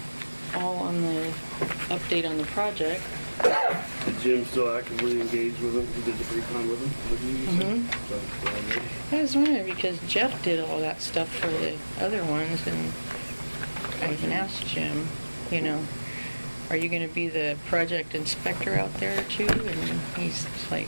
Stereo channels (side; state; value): both; inverted; correlation -1.00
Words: all on the update on the project. Did Jim still actively engage with him? He did the pre-con with him? With you, you said? So, I was wondering, because Jeff did all that stuff for the other ones, and I even asked Jim, are you gonna be the project inspector out there too? And he's like,